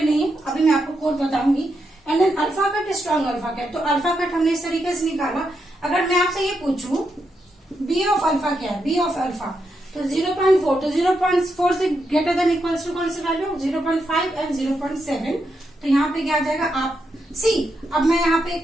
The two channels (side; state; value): both; normal; correlation 0.83